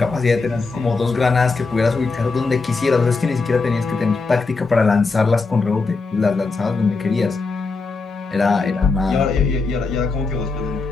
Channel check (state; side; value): quieter; right; 4.1 dB